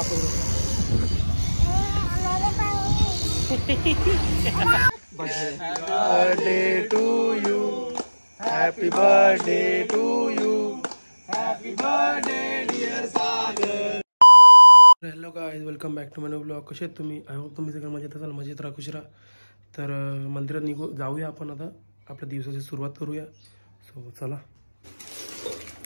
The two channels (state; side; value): inverted; both; correlation -1.00